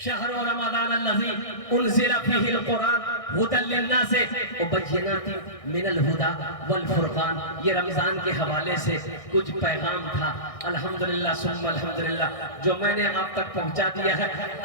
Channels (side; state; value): right; late; 1.6 ms